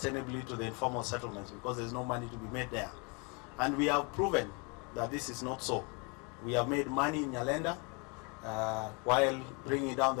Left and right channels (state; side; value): quieter; right; 32.6 dB